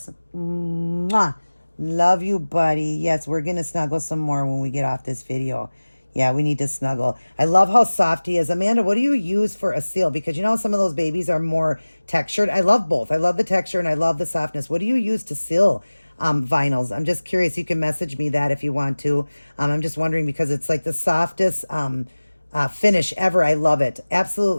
Mwah. Love you, buddy. Yes, we're going to snuggle some more when we get off this video. Yeah, we need to snuggle. I love how soft he is. Amanda, what do you use for a seal? Because you know some of those babies are more textured. I love both. I love the texture and I love the softness. What do you use to seal vinyls? I'm just curious. You can message me that if you want to. I'm just wondering because it's like the softest finish ever. I love it.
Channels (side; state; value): both; inverted; correlation -1.00